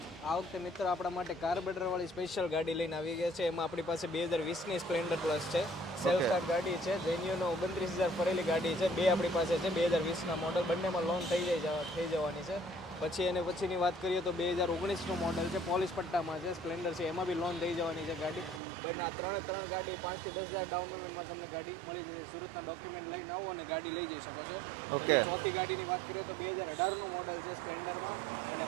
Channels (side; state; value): left; drops out; at 18.6 s